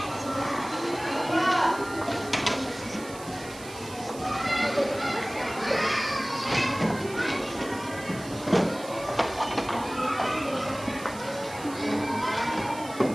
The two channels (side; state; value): right; noise; hiss, 16 dB below the sound